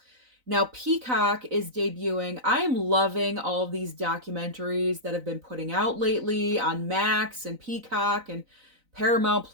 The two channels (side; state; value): left; late; 3.9 ms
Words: Now, Peacock is debuting. I am loving all of these documentaries that have been putting out lately on Max and Peacock and Paramount